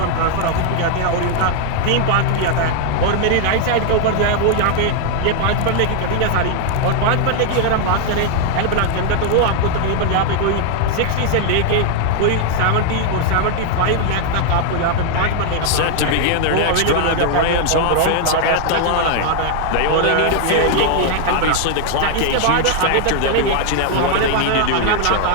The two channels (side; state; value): both; different; correlation 0.00